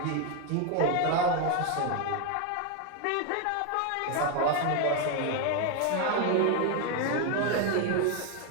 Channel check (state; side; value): different; both; correlation 0.01